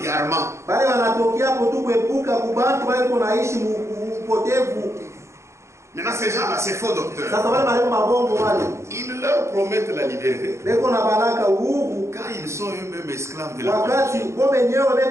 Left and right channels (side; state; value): left; late; 0.14 ms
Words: Bale wanatokea hapo tu kuepuka kubaki bale kunaishi upotevu. Maintenant, ces gens-là, ces faux docteurs, Sasa bale balimu ba bongo wale ils leur promettent la liberté beko na baraka uhuru, quand ils sont eux-mêmes esclaves de la wakati corruption. wao wenyewe